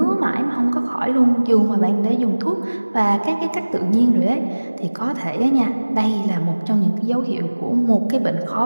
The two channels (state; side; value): inverted; both; correlation -1.00